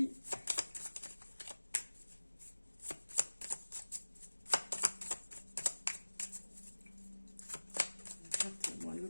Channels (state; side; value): inverted; both; correlation -1.00